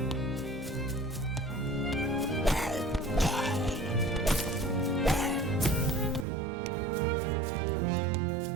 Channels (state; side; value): drops out; left; at 6.2 s